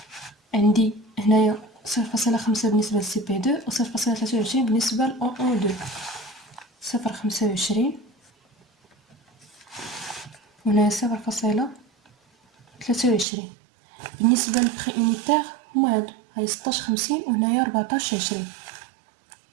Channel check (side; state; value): left; drops out; at 13.2 s